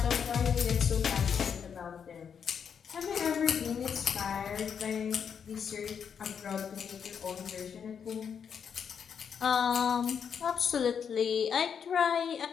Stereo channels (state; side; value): quieter; right; 7.2 dB